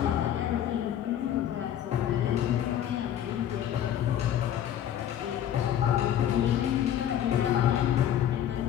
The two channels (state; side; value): quieter; right; 10.6 dB